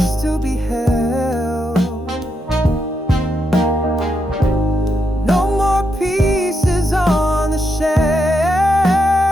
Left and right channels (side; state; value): both; normal; correlation 0.81